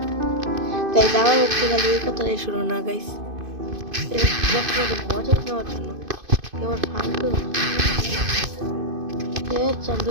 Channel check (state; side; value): late; left; 2.5 ms